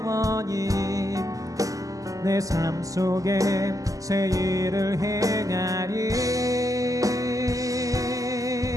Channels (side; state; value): left; late; 0.17 ms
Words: 내 삶 속에 새 일을 행하리.